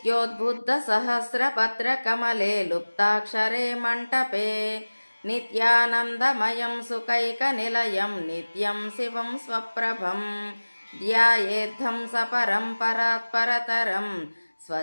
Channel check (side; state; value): both; inverted; correlation -1.00